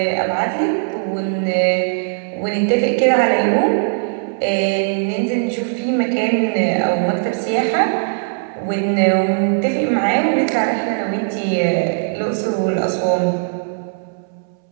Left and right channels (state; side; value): silent; left; 67 dB below the other